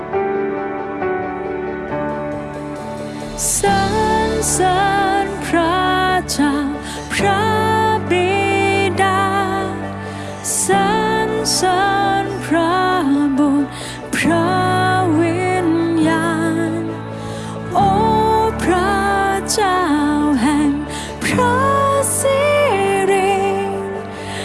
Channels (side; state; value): both; identical; correlation 1.00